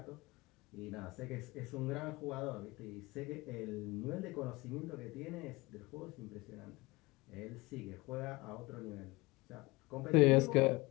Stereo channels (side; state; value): right; quieter; 22.7 dB